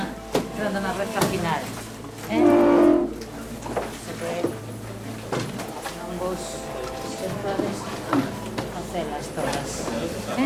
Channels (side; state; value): both; identical; correlation 1.00